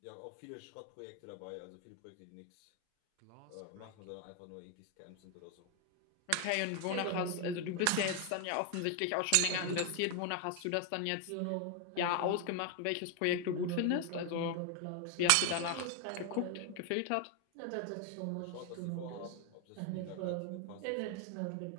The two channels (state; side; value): different; both; correlation 0.01